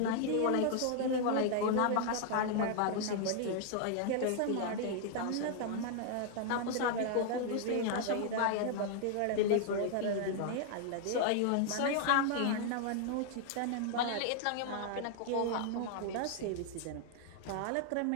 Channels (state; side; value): different; both; correlation 0.00